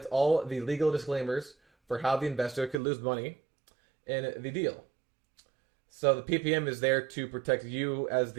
all the legal disclaimers for how the investor could lose money in the deal. So the PPM is there to protect you as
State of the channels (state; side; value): drops out; left; at 2.8 s